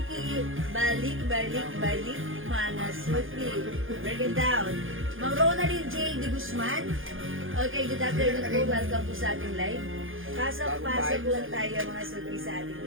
Balik. Mga suki. Break it down. Mang Ronaldin J. De Guzman. Okay, good afternoon po. Welcome po sa ating live. Pasok lang tayo mga suki sa ating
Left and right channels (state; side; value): late; left; 0.58 ms